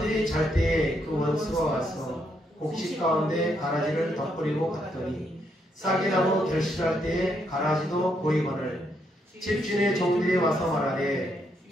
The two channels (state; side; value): normal; both; correlation 0.76